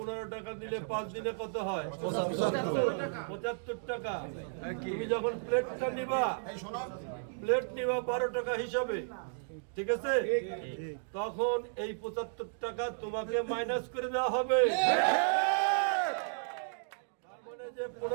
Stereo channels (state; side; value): silent; left; digital silence